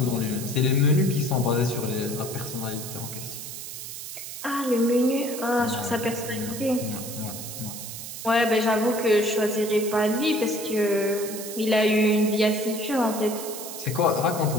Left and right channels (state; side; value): noise; right; hiss, 9 dB below the sound